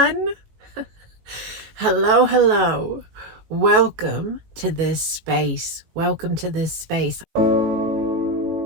Hello, hello. Welcome to this space. Welcome to this space.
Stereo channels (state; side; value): late; left; 18 ms